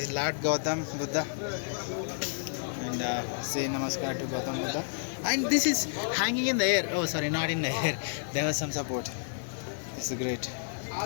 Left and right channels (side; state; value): right; silent; 57 dB below the other